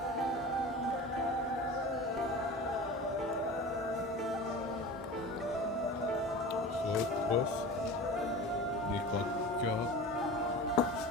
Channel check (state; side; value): normal; both; correlation 0.34